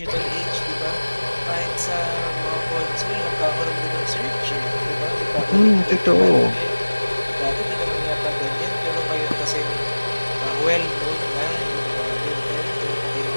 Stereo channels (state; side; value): inverted; both; correlation -1.00